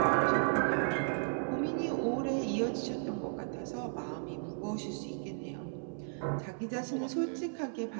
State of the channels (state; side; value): silent; left; 55 dB below the other